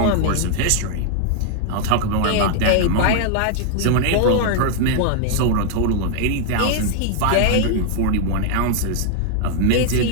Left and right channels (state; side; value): different; both; correlation 0.00